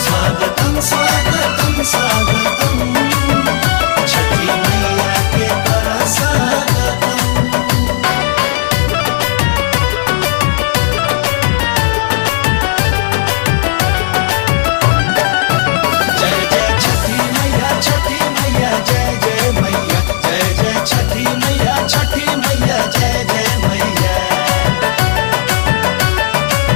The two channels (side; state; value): right; silent; digital silence